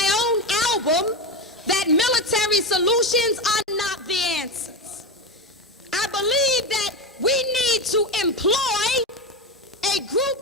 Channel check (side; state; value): both; normal; correlation 0.17